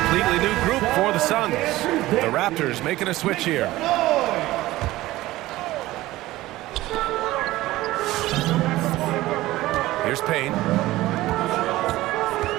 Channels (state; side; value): quieter; left; 17.2 dB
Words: new group for the Suns. The Raptors making a switch here. Here's Payne.